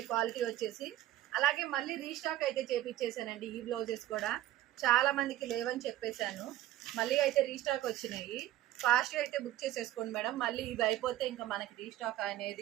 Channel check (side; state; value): left; quieter; 13.9 dB